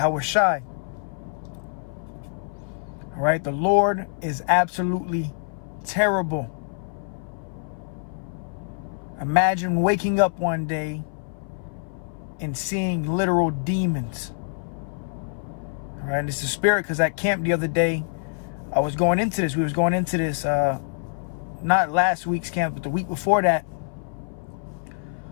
Shai. All right, the Lord is absolutely terrible. Imagine waking up one day and seeing literal demons. All right, this is spirit, because at camp the other day, I was going into this. We was going into this, not last week's camp, but the week before that.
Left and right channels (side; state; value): right; silent; 58 dB below the other